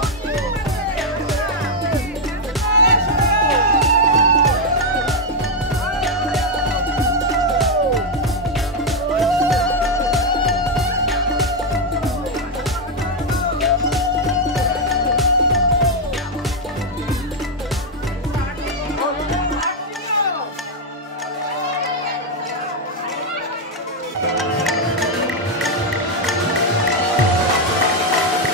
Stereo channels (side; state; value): both; normal; correlation 0.02